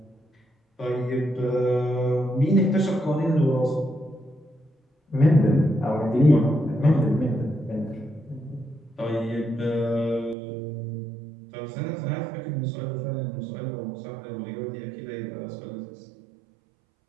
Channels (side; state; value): left; drops out; at 10.4 s